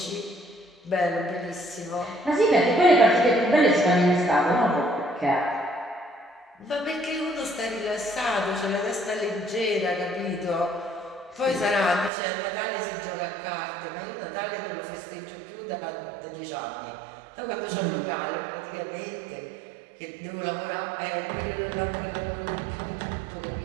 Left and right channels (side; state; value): left; drops out; at 12.1 s